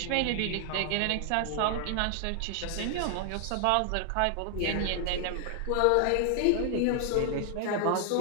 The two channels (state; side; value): different; both; correlation 0.00